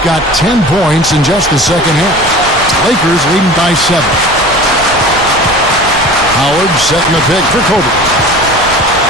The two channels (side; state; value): right; noise; rumble, 16 dB below the sound